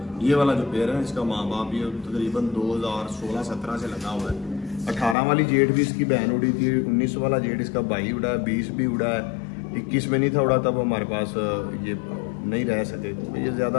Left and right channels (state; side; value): drops out; right; at 5.2 s